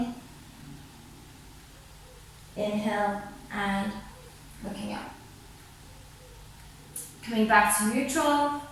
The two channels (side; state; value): both; identical; correlation 1.00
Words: Inhale and looking up. Coming back to neutral.